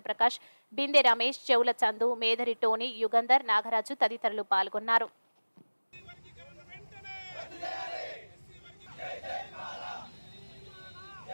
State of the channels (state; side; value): inverted; both; correlation -1.00